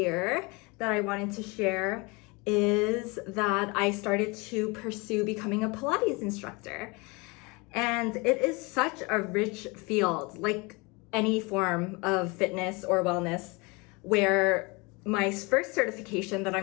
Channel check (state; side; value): quieter; right; 27.3 dB